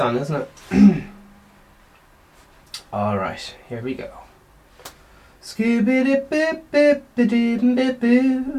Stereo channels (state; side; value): identical; both; correlation 1.00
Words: isn't it? Alright, here we go.